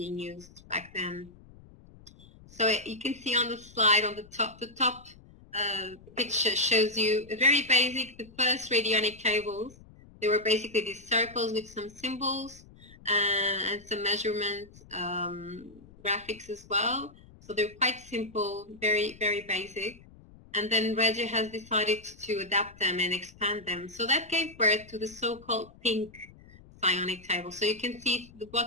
used back then. So you can see on the slide on the top picture shows you a very basic, the first radionic tables. They were basically these circles with some symbols and some measurement graphics as well. So they're quite simple, very, very basic. And then Régia has decided to adapt them and expand them. So that gave birth to the so-called pink psionic table. So you can see the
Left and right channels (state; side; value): noise; left; rumble, 23 dB below the sound